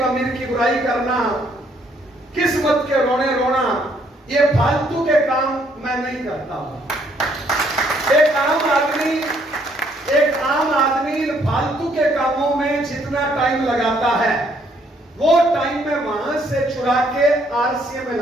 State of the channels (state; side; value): normal; both; correlation 0.68